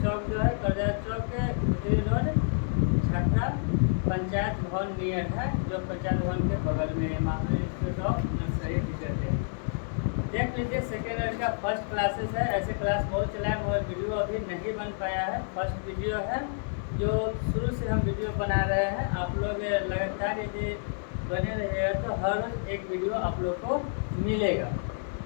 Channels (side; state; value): right; silent; 59 dB below the other